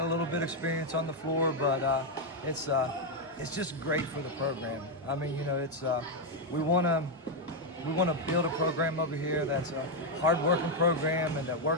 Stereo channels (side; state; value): both; normal; correlation 0.01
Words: a little bit of experience on the floor, but it's just great for the program. We want to build a program over here that's a hard-working program and that